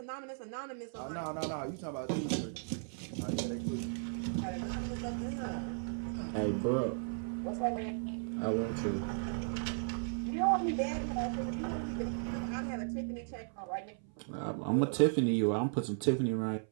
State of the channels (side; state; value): left; silent; 54 dB below the other